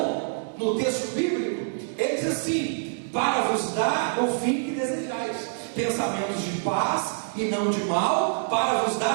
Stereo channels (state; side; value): silent; left; digital silence